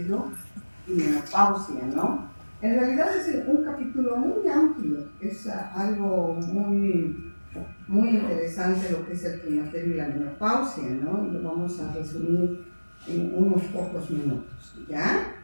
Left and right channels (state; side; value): inverted; both; correlation -1.00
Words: y menopausia, ¿no? En realidad es un capítulo muy amplio, es algo muy interesante lo que es el climaterio y la menopausia, ¿no? Y lo vamos a resumir en unos pocos minutos, ¿ya?